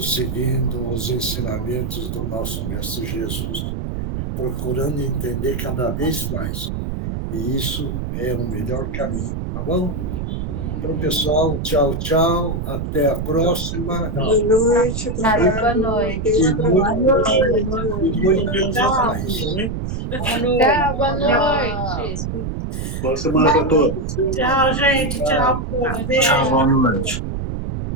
seguindo os ensinamentos do nosso Mestre Jesus, procurando entender cada vez mais E isso é o melhor caminho, tá bom? Então, pessoal, tchau, tchau. Até a próxima. Boa noite. Boa noite. Tchau, boa noite. Boa semana para todos. Tchau, gente. Tchau, povo. Beijo. Tchau, boa noite.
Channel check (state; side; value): noise; right; rumble, 4 dB below the sound